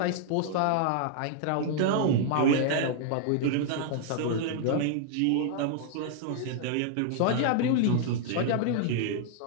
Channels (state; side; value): different; both; correlation -0.01